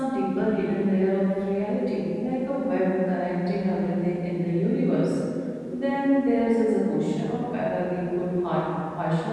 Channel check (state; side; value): identical; both; correlation 1.00